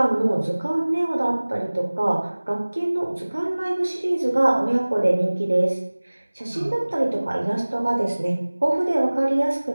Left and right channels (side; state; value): both; inverted; correlation -1.00